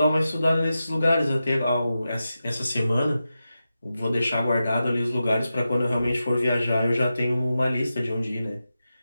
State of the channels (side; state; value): both; inverted; correlation -0.91